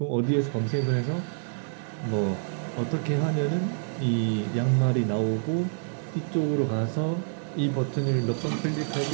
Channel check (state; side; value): silent; left; digital silence